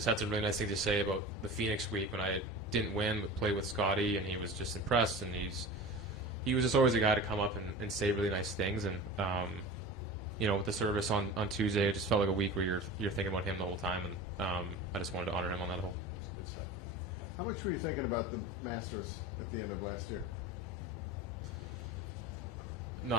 had some really nice things to say about the Phoenix week when I didn't win but played with Scotty, and he was just impressed. And he was just always a guy to come up and say really nice things. And you know, with the service on Tuesday, it just felt like a week where you're thinking about him the whole time, and I just wanted to honor him on that whole. Good stuff. How much were you thinking about the Masters at the end of last year?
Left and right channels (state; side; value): normal; both; correlation 0.33